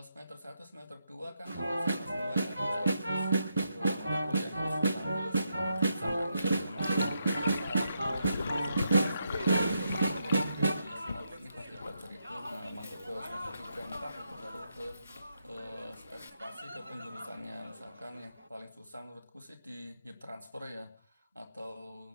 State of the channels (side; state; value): both; inverted; correlation -0.82